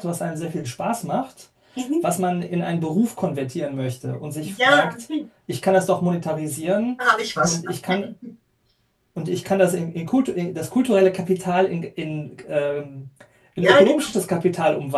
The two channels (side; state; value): both; identical; correlation 1.00